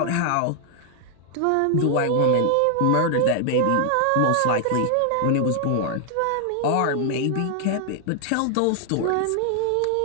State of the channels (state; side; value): different; both; correlation 0.00